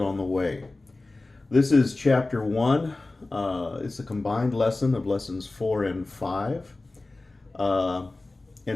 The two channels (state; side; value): quieter; right; 3.1 dB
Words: the way. This is chapter 1. It's a combined lesson of lessons 4 and 5.